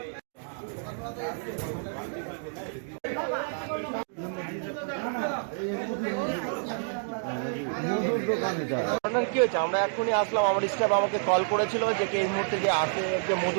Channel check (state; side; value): silent; left; digital silence